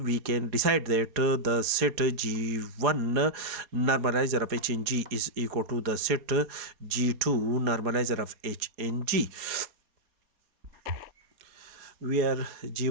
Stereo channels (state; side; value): late; left; 4.2 ms